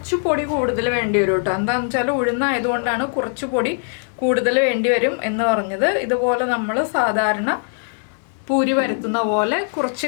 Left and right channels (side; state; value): right; silent; digital silence